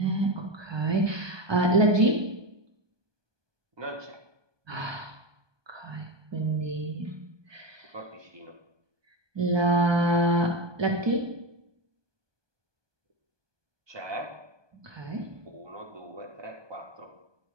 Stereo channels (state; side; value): late; left; 1.2 ms